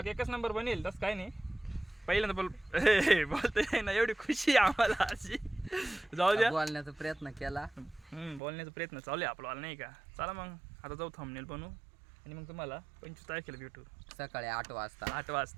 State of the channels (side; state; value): left; drops out; at 8.4 s